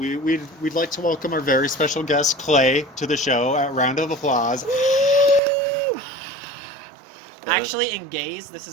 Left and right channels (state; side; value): drops out; left; at 5.4 s